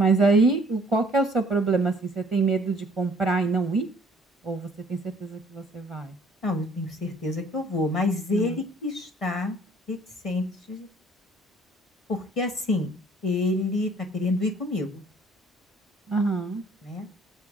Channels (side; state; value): both; normal; correlation 0.57